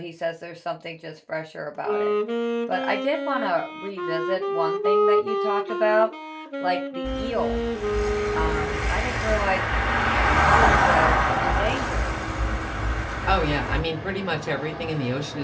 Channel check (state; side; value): identical; both; correlation 1.00